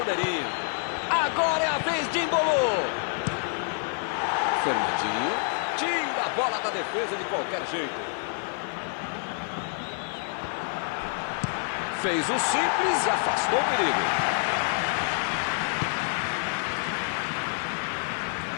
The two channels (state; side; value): silent; right; 60 dB below the other